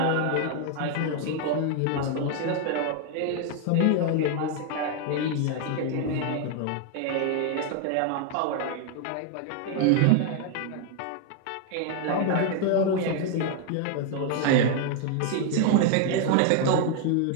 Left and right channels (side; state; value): both; different; correlation 0.00